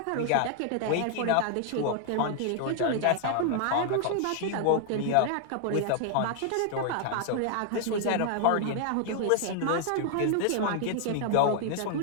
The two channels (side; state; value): both; different; correlation 0.00